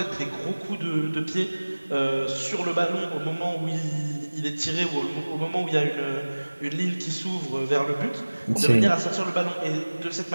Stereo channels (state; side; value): inverted; both; correlation -1.00